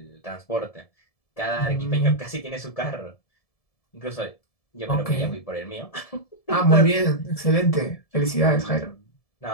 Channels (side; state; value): right; late; 1.7 ms